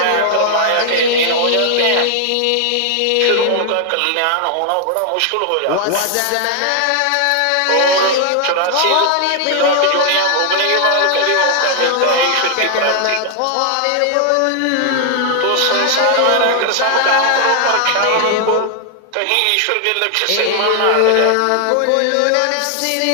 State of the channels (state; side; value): different; both; correlation 0.00